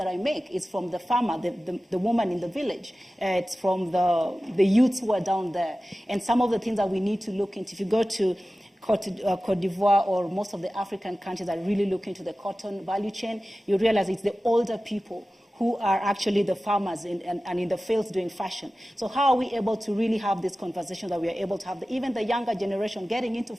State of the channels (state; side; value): normal; both; correlation 0.95